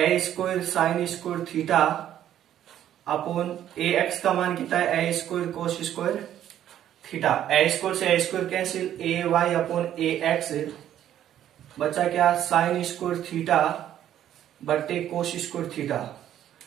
square sine square theta upon a x का मान कितना है, a square cos square theta. A square से a square cancel, a y upon a x बचा क्या, साइन स्क्वायर थीटा बट्टे कोस स्क्वायर थीटा।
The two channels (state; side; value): quieter; left; 11.2 dB